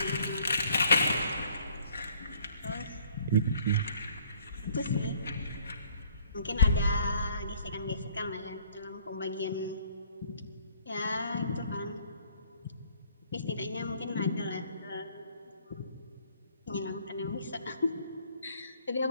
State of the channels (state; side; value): inverted; both; correlation -0.59